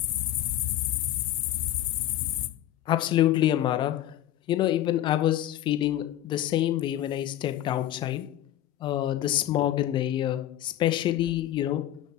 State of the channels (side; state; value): right; quieter; 12.7 dB